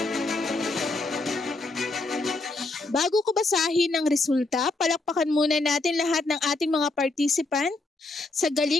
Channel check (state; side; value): quieter; right; 3.2 dB